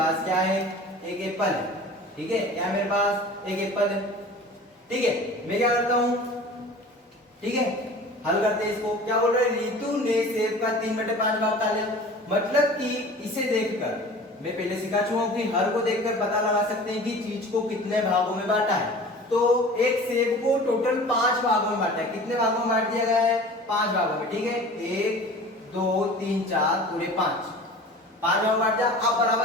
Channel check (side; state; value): both; normal; correlation 0.41